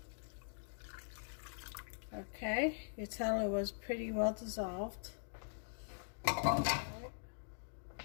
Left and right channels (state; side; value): silent; right; digital silence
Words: Okay, you tell it was pretty well dissolved. Let